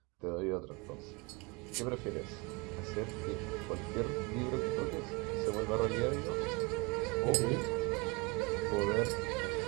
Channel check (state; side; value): quieter; left; 28.0 dB